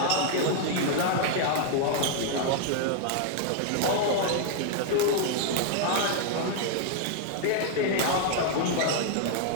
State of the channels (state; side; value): different; both; correlation 0.00